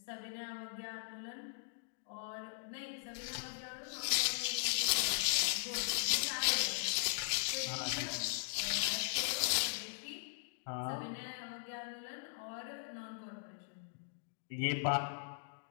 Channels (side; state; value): right; silent; digital silence